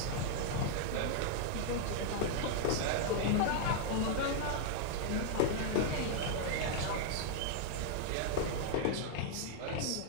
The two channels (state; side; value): different; both; correlation -0.01